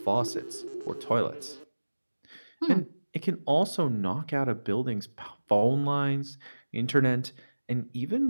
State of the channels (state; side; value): inverted; both; correlation -1.00